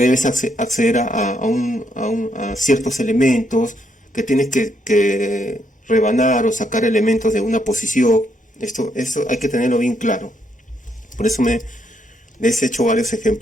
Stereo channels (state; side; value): normal; both; correlation 0.75